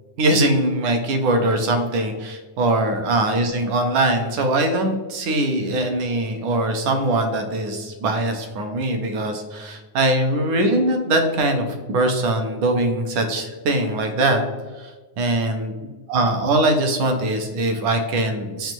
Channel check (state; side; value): late; left; 9.8 ms